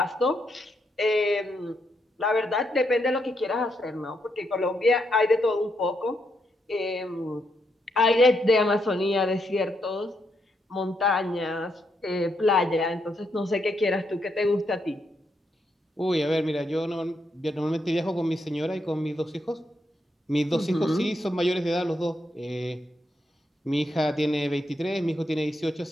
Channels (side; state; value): both; normal; correlation 0.79